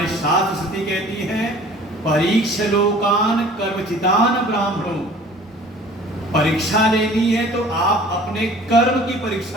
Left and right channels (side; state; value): both; normal; correlation 0.49